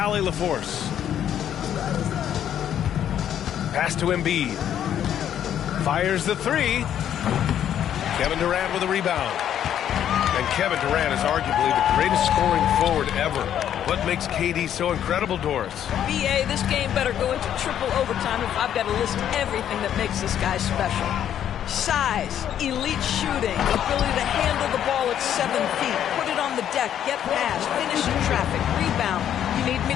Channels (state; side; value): quieter; right; 10.1 dB